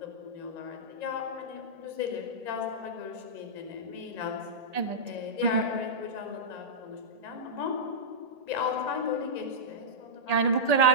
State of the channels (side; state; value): left; late; 1.8 ms